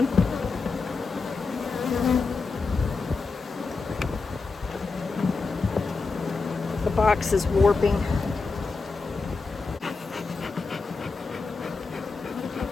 The box is warping.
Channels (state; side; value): quieter; right; 4.3 dB